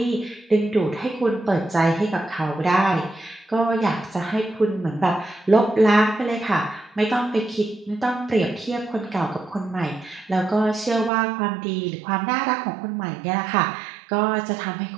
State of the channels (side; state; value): left; drops out; at 11.1 s